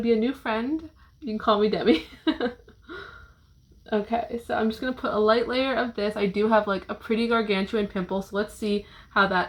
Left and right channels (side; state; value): both; identical; correlation 1.00